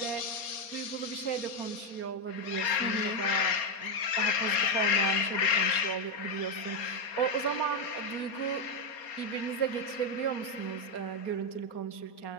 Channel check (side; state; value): right; late; 4.3 ms